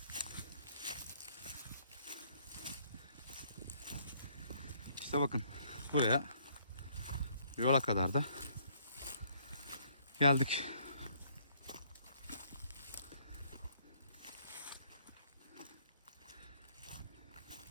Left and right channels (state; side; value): inverted; both; correlation -0.66